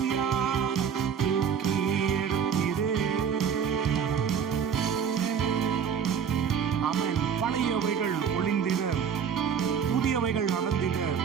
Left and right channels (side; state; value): left; quieter; 7.4 dB